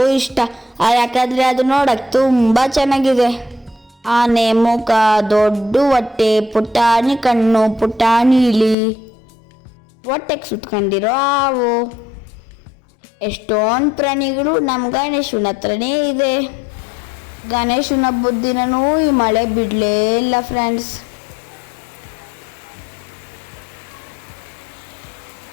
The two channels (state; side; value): drops out; right; at 8.8 s